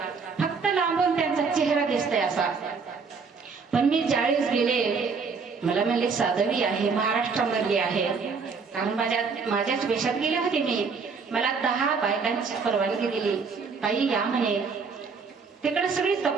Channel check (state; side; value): quieter; left; 5.1 dB